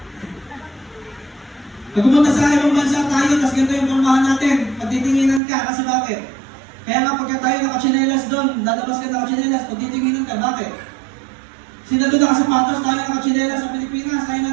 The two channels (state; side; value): drops out; left; at 5.4 s